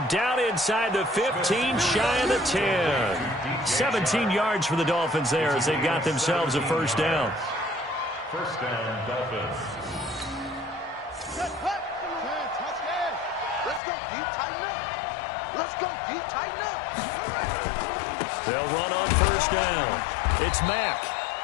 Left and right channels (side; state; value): right; drops out; at 13.8 s